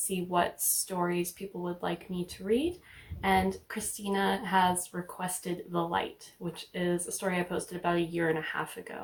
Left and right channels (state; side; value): identical; both; correlation 1.00